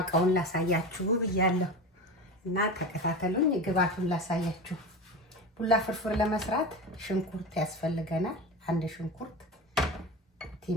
ላሳያችሁ ብያለሁ እና ተከታተሉኝ። ግብአቱን ላሳያችሁ። ቡላ ፍርፍር ለመስራት ሽንኩርት ያስፈልገናል። አንድ ሽንኩርት፣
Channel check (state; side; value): normal; both; correlation 0.27